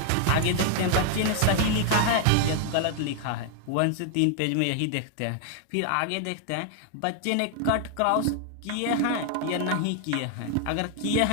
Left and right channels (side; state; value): both; different; correlation 0.00